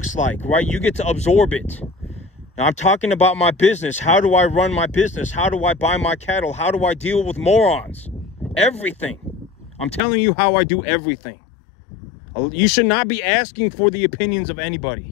like, right? You get to absorb it. Now, I'm talking about my business. How do I run my business? How do I buy my cattle? How do I deal with morons? Everything. I'm telling you how I do everything. You should not be asking for the opinions of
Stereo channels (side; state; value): right; drops out; at 10.0 s